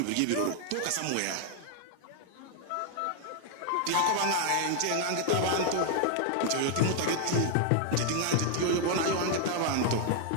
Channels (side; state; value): both; different; correlation 0.00